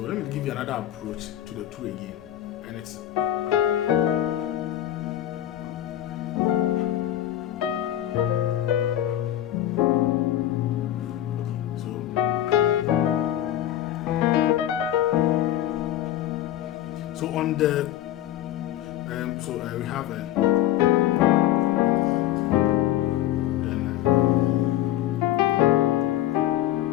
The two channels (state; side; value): quieter; right; 12.9 dB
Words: let me give you another approach to the 2 again, and it's so on the we have then